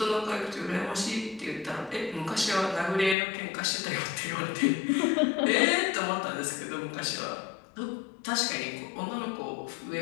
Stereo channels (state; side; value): drops out; right; at 3.2 s